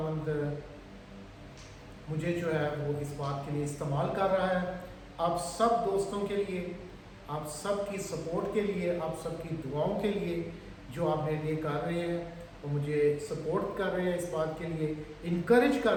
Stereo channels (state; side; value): identical; both; correlation 1.00